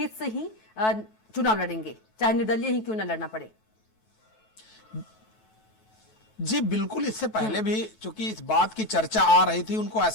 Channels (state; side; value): late; right; 9.2 ms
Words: से ही चुनाव लड़ेंगे, चाहे निर्दलीय ही क्यों ना लड़ना पड़े। जी बिल्कुल, इससे पहले भी चूंकि इस बात की चर्चा आ रही थी, उनको